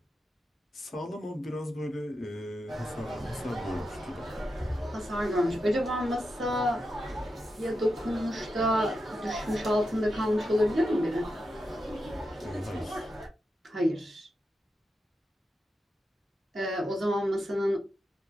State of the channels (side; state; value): both; normal; correlation 0.88